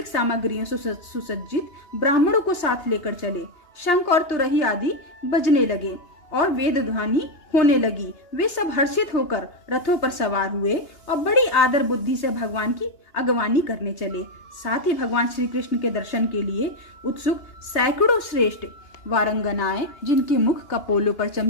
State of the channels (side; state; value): right; late; 2.8 ms